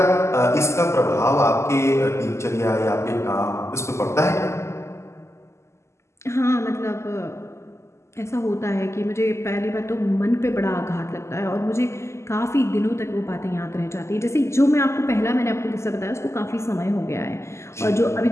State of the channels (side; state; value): right; late; 0.13 ms